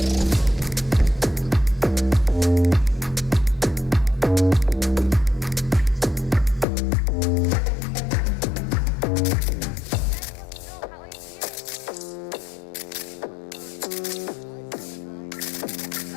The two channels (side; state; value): right; drops out; at 6.7 s